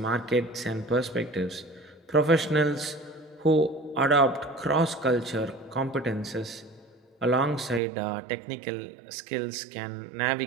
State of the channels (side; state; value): left; drops out; at 7.8 s